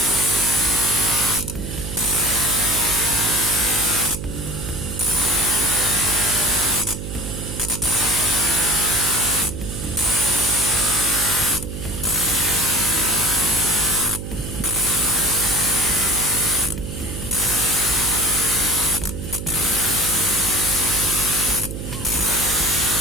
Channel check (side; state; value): right; noise; hum, 7 dB below the sound